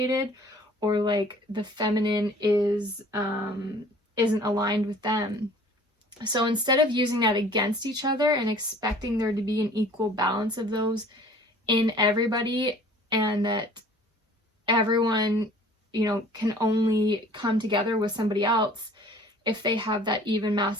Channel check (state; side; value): normal; both; correlation 0.50